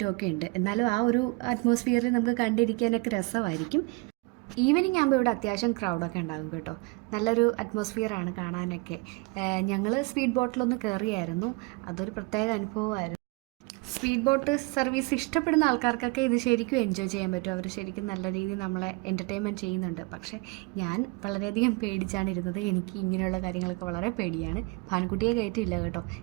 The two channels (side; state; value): left; quieter; 27.6 dB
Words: ഉണ്ട്. എന്നാലും ആ ഒരു അറ്റ്മോസ്ഫിയറിൽ നമുക്ക് കണ്ടിരിക്കാനൊക്കെ രസമായിരിക്കും. ഈവനിങ് ആകുമ്പോൾ ഇവിടെ അത്യാവശ്യം ക്രൗഡൊക്കെ ഉണ്ടാകും കേട്ടോ. നല്ലൊരു അറ്റ്മോസ്ഫിയറാണ് കാണാനൊക്കെ. ഞങ്ങൾ സ്പീഡ് ബോട്ടിലൊന്ന് കയറിയായിരുന്നു. അതൊരു പ്രത്യേക അനുഭവമായിരുന്നു. സ്പീഡ് ബോട്ട് സർവീസ് ഇഷ്ടപ്പെടുന്ന ആൾക്കാർക്കൊക്കെ ഇത് ശരിക്കും എൻജോയ് ചെയ്യാൻ പറ്റും. അവർ ശരിക്കും നല്ല രീതിയിൽ നമ്മളെ എൻ്റർടൈൻമെൻറ്റ് ചെയ്യുന്നുണ്ട്. പക്ഷേ ഞാൻ വളരെയധികം പേടിച്ചാണ് ഇരുന്നത്. എനിക്ക് ഇങ്ങനെയുള്ള കാര്യങ്ങളൊക്കെ വളരെ പേടിയാണ്. ഭാനുക്കുട്ടിയെ കയറ്റിയില്ല കേട്ടോ.